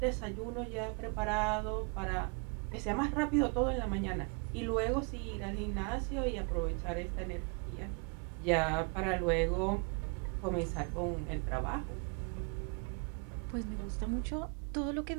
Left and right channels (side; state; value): left; quieter; 34.9 dB